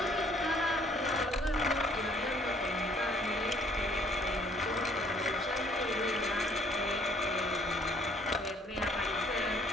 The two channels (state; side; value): normal; both; correlation 0.60